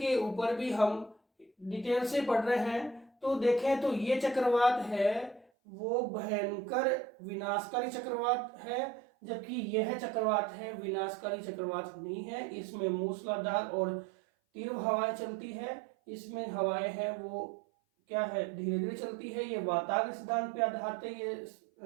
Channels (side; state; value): left; drops out; at 5.5 s